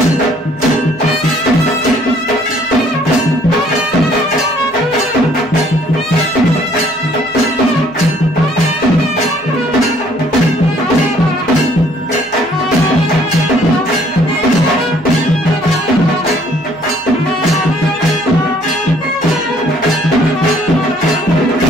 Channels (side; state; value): left; noise; hum, 27 dB below the sound